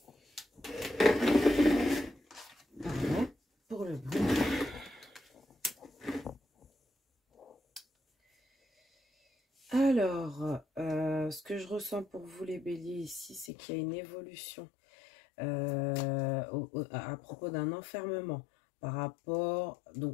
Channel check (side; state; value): right; drops out; at 13.5 s